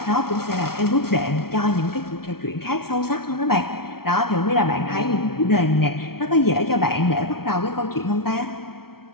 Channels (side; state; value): right; late; 0.94 ms